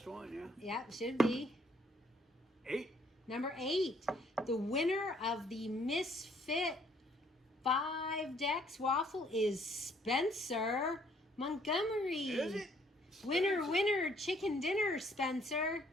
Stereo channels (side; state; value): both; normal; correlation 0.64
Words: one, yeah? Yeah, should be. 8. Number 8, the winner of the Misfit 5 decks waffle is Spencer Montgomery. Is it? Winner, winner, chicken dinner, Spencer.